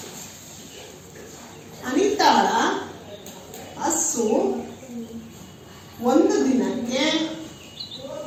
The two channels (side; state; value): both; identical; correlation 1.00